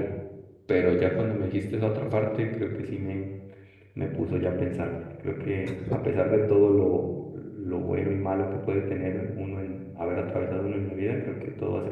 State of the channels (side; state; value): both; identical; correlation 1.00